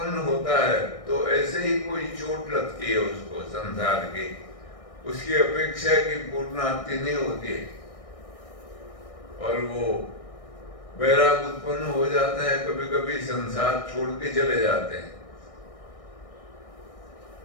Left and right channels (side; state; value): right; late; 1.6 ms